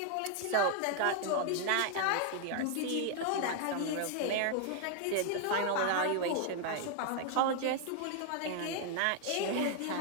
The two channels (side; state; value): both; different; correlation 0.00